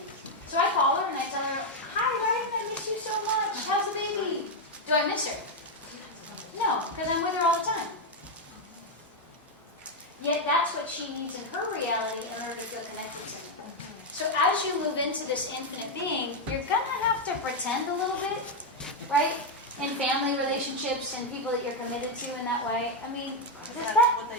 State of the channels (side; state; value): both; normal; correlation 0.02